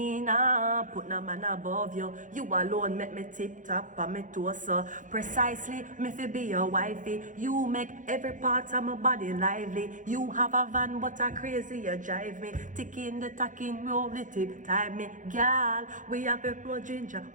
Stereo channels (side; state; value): left; late; 0.37 ms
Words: nah put no man above you. You alone make me tip-top on me toes so. Precisely, me fi be your wifey. You make every part of my body lively. You have a van but a crazy you drive me. Ticking the tacking, roll the tip, time me. Girl, we have a pro ginger,